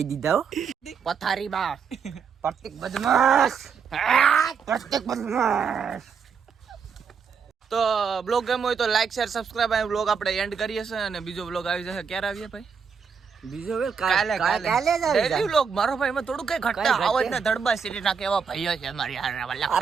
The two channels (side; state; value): left; quieter; 6.2 dB